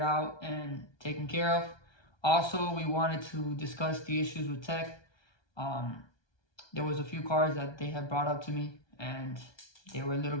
out and taken care of. Also, we wanted to discuss the issues with tech. There was a few cars that they had brought up to me, and they were a little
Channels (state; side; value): late; right; 1.2 ms